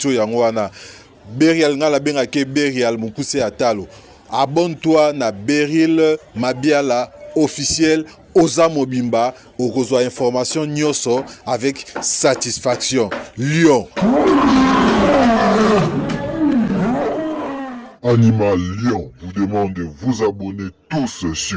yango wana. Beryl ngala bengake Beryl Mokuse Atalo. Abonne-toi na Beryl Mabiala officiel. Oza Mobimba, okozwa information nyoso avec satisfaction. Lion. Animal Lion vous demande de vous abonner tous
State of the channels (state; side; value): identical; both; correlation 1.00